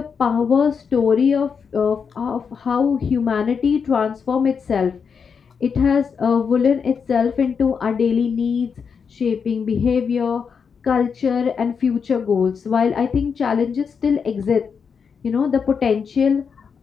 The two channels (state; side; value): quieter; right; 6.2 dB